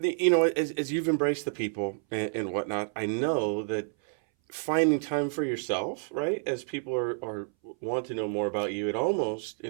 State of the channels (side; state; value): left; silent; 59 dB below the other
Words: As you've embraced the people and whatnot, I know that finding time for yourself, right? As people are want to know more about you,